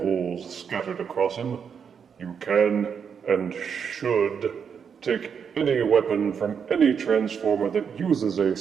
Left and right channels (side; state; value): left; quieter; 6.9 dB